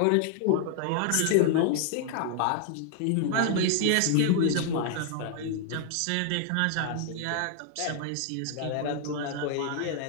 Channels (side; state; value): both; different; correlation 0.00